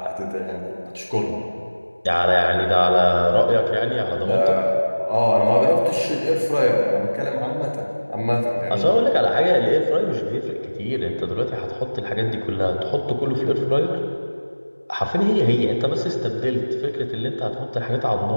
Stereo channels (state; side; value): inverted; both; correlation -1.00